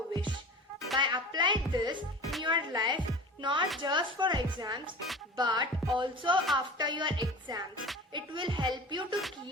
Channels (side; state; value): both; normal; correlation 0.37